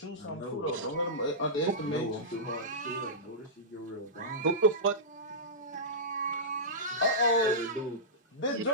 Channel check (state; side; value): normal; both; correlation -0.15